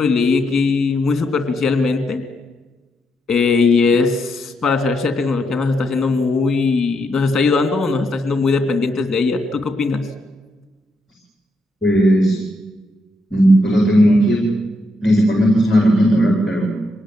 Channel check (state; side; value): normal; both; correlation 0.80